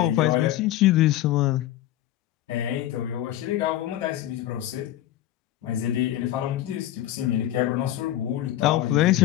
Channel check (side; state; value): right; quieter; 13.5 dB